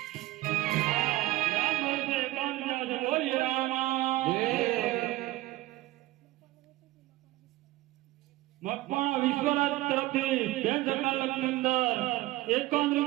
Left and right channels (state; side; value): quieter; left; 17.8 dB